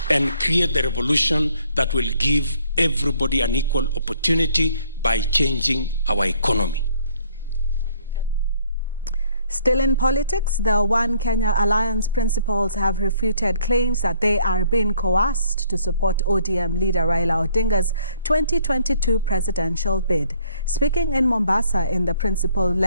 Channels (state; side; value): inverted; both; correlation -0.62